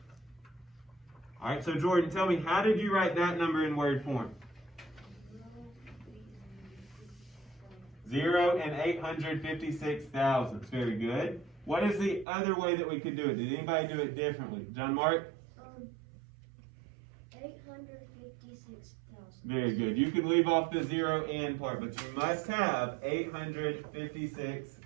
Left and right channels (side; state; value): left; drops out; at 12.2 s